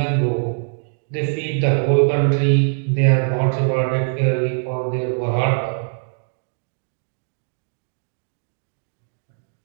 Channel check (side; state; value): left; silent; digital silence